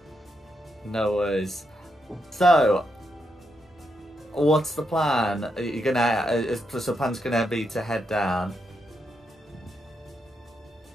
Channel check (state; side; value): normal; both; correlation 0.82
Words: No worries. So, what's the plan? Are you gonna? So, plan's gonna be to head down.